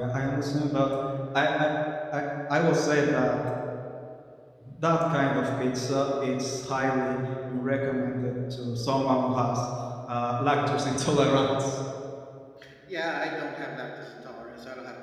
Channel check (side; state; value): both; identical; correlation 1.00